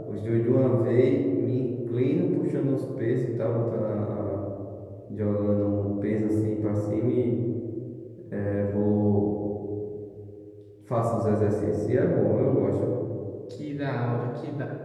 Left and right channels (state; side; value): identical; both; correlation 1.00